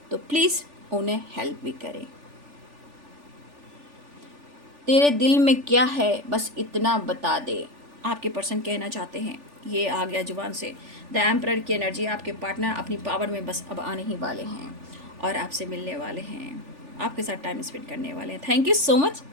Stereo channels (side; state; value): left; late; 3.4 ms